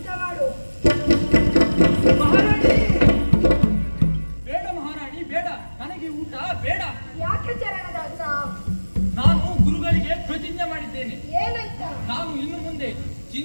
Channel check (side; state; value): both; inverted; correlation -1.00